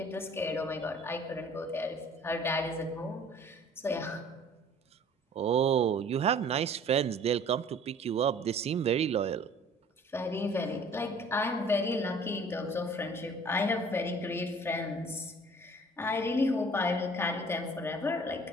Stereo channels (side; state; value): both; normal; correlation 0.50